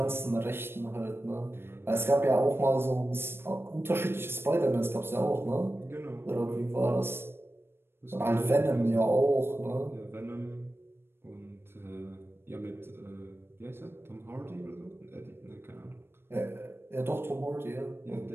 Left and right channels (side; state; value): left; late; 0.11 ms